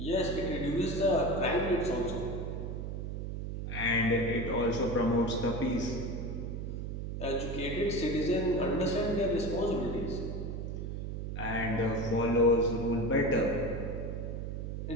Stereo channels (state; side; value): noise; right; hum, 5 dB below the sound